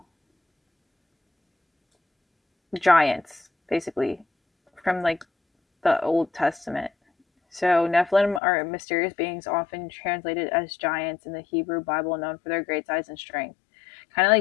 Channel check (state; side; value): drops out; right; at 8.4 s